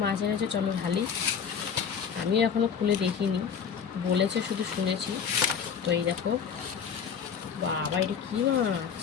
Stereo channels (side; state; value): right; quieter; 7.0 dB